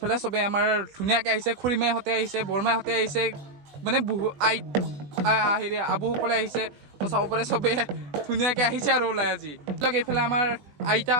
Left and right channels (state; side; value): late; left; 20 ms